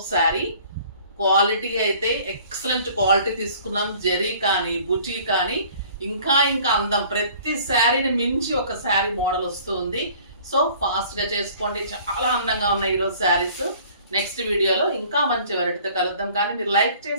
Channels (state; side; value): inverted; both; correlation -0.52